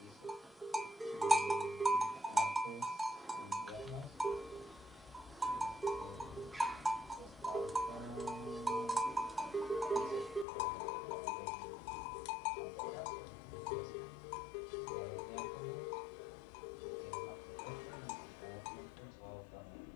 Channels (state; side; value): drops out; right; at 10.5 s